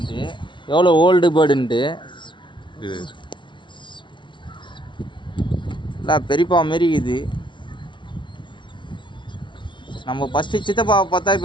எவ்வளோ ஓல்டு பேர்டுன்ட்டு. இல்லை பெரியப்பா மாரி இது. நம்ம ஃபஸ்ட்டு சித்தப்பாவை பார்த்தா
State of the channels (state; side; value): late; right; 0.23 ms